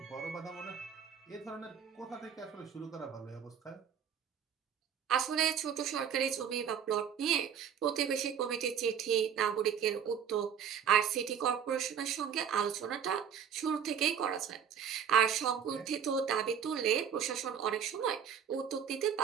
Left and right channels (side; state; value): left; quieter; 8.0 dB